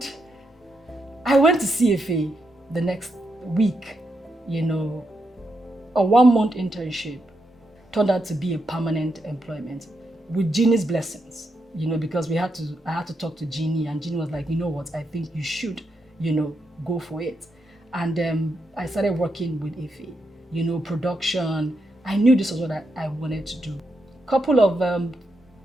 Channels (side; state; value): both; normal; correlation 0.83